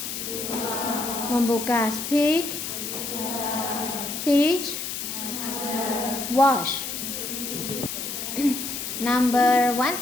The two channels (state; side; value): noise; left; hiss, 5 dB below the sound